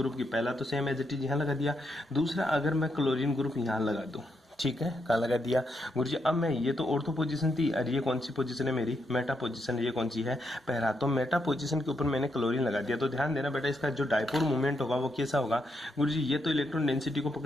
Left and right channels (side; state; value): both; normal; correlation 0.80